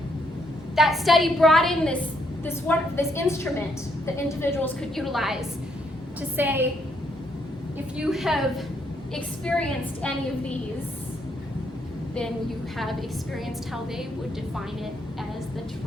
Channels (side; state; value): both; normal; correlation 0.73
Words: that study brought in this instrument that individuals could utilize to say, if you have experienced any of these, then you have experienced how they would define it as the